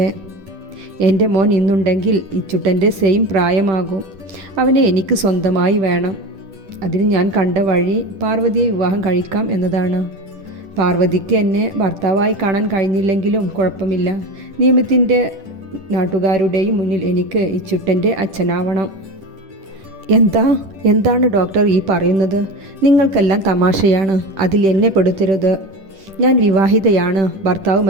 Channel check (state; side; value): late; left; 10 ms